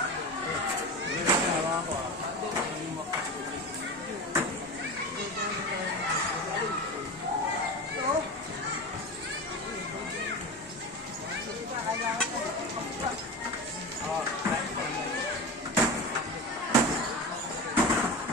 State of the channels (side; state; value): both; normal; correlation 0.26